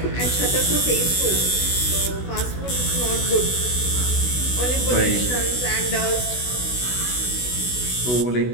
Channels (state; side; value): late; right; 16 ms